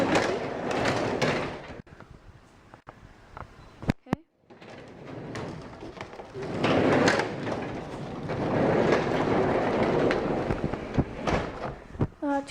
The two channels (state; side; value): identical; both; correlation 1.00